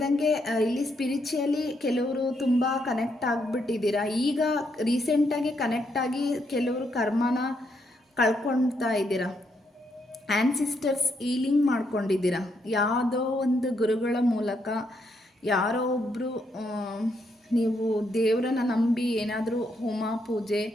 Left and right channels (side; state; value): both; normal; correlation 0.77